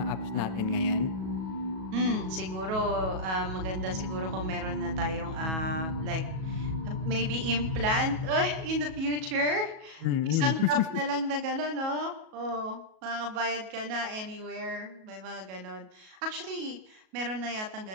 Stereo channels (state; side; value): late; left; 37 ms